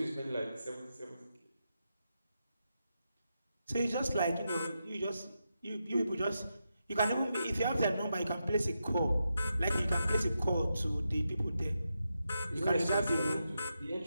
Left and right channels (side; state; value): both; inverted; correlation -0.86